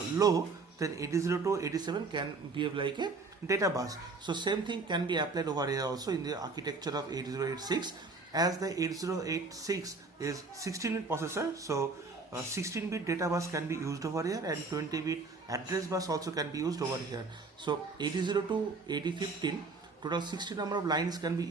low, then 80 to 87 can behave like a data bus. So same thing can be applied over here also in the architecture of 8086. As the 8086 is 16-bit processor, so 16-bit data bus can be used over here, and 20-bit address bus also can be used over here. So 80 to 8015, total 60 number of lines can be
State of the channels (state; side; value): quieter; left; 3.9 dB